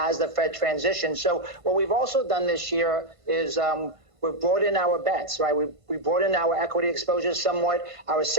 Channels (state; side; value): late; left; 1.5 ms